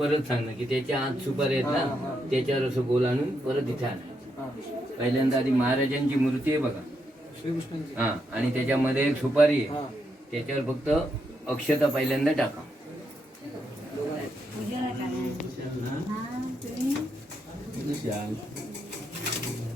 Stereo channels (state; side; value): normal; both; correlation 0.80